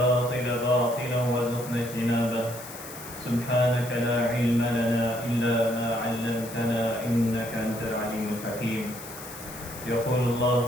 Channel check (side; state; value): left; noise; hiss, 14 dB below the sound